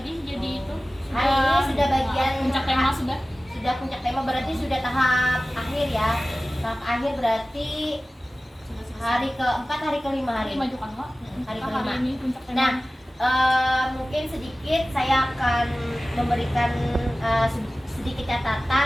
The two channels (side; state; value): both; normal; correlation 0.97